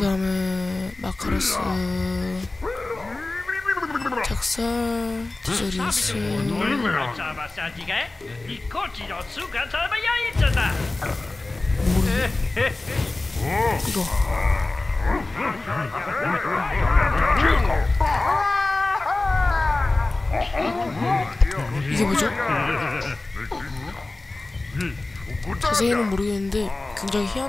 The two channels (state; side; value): quieter; right; 3.1 dB